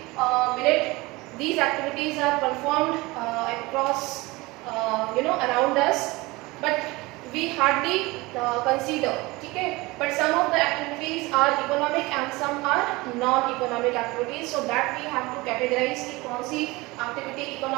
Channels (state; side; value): quieter; left; 22.4 dB